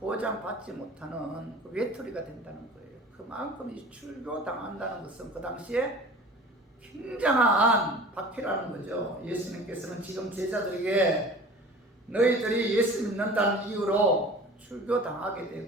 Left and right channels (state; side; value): normal; both; correlation 0.42